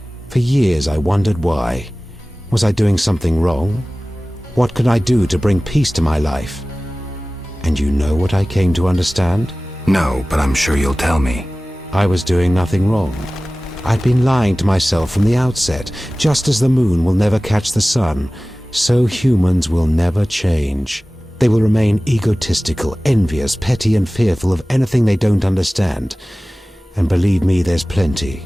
For years I wondered why. Was I doing something wrong? What could I do to bring peace to my life? And you know what I came to understand? No, but I'm sure you'll tell me. I was doing nothing wrong. I'd been lying to myself from the outset. Just as the moon will never catch the sun, so humans will never change. They will remain egotistical, envious, petty, and fearful of anything they don't understand. And believe me, there's plenty.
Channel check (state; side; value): normal; both; correlation 0.97